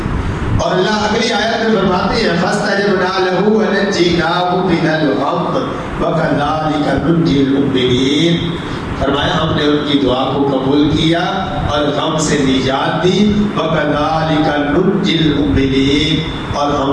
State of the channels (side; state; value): both; identical; correlation 1.00